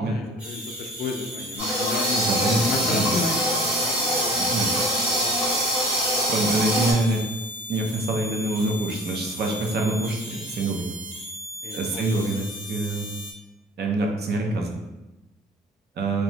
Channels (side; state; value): both; normal; correlation 0.47